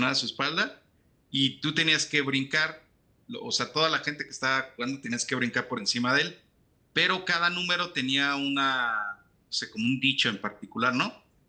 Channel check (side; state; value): both; identical; correlation 1.00